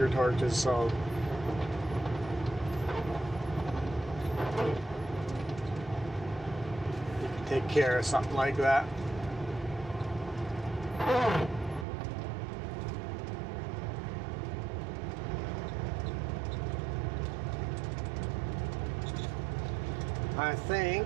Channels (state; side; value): drops out; left; at 11.9 s